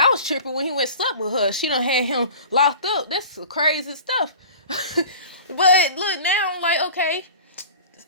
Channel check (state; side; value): inverted; both; correlation -0.39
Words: I was tripping when he went slept with her. She done had him locked up. That's crazy stuff. But look, now I'm like, okay.